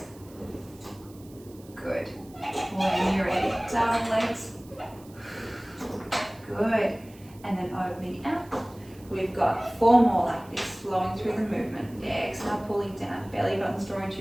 Good. When you're ready, double legs. Good. And then opening out. We've got 4 more like this, flowing through the movement. Exhale, pulling down. Belly buttons drawing to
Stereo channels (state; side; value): noise; right; hiss, 25 dB below the sound